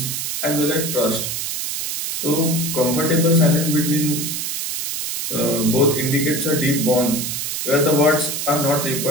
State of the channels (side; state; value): right; noise; hiss, 3 dB below the sound